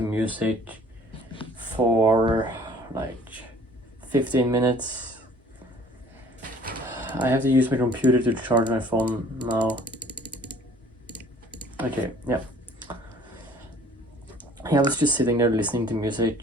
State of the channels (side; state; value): both; normal; correlation 0.53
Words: music for like 15 minutes. I have to use my computer to charge my phone now. Okay, yeah. I was just sitting there listening to